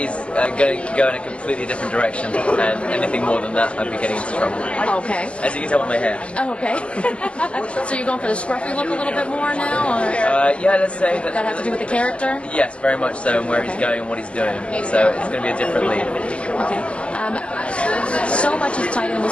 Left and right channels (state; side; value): late; right; 0.056 ms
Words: going to go in a completely different direction, and anything more than that, I'd be getting into trouble. Okay. As you can tell by my hair. Oh, okay. So you're going for the scruffy look a little bit more now? Or? Yeah, let's say that... That have to do with the character? Yes, very much so, and where he's going and what he's doing. So it's going to be a different lead. Okay. So much is tied in